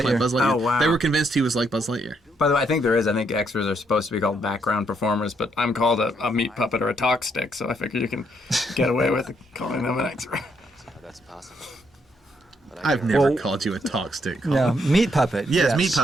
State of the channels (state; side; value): normal; both; correlation 0.74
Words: Buzz like Buzz Lightyear. Oh, wow. They were convinced he was like Buzz Lightyear. By the way, I think there is. I think extras are supposed to be called background performers, but I'm called a meat puppet or a talk stick, so I figure you can get away with calling them an extra. That's possible. I've never Well- called you a talk stick. No, Colin. meat puppet. Yes, meat